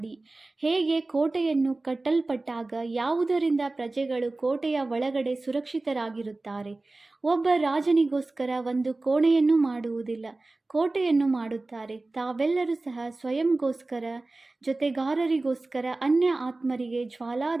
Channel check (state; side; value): quieter; left; 3.1 dB